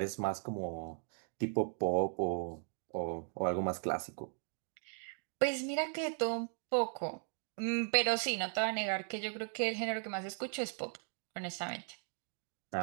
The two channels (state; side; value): silent; left; 53 dB below the other